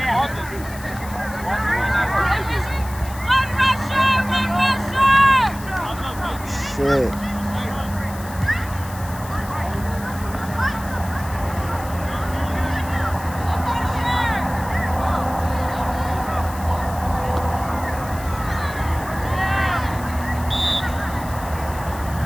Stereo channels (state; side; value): noise; left; hiss, 16 dB below the sound